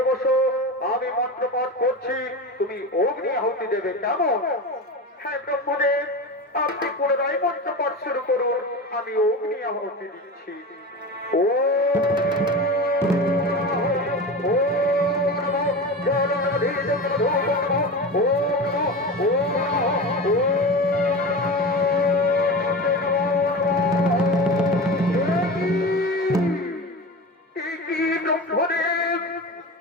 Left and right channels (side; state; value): both; normal; correlation 0.28